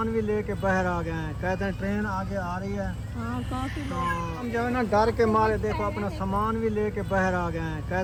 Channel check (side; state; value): both; identical; correlation 1.00